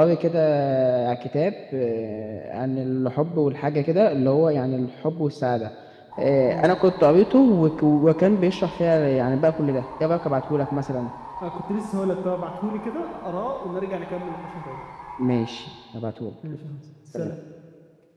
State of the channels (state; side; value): identical; both; correlation 1.00